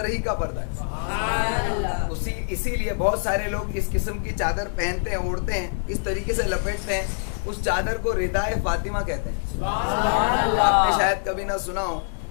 ہی کا پردہ ہے. اسی لیے بہت سارے لوگ اس قسم کی چادر پہنتے ہیں, اوڑھتے ہیں, اس طریقے سے لپیٹتے ہیں, اس چادر کو ردائے فاطمہ کہتے ہیں. آپ نے شاید کبھی نہ سنا ہو,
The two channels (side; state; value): right; silent; 61 dB below the other